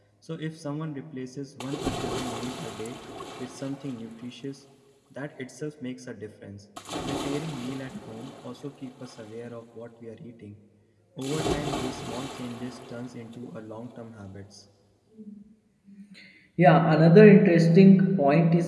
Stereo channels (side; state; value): both; identical; correlation 1.00